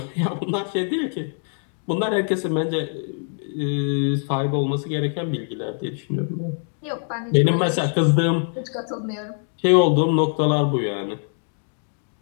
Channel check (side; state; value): right; silent; 59 dB below the other